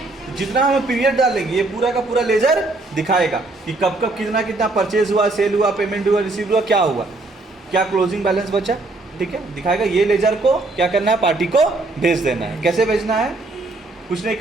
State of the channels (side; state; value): left; quieter; 3.1 dB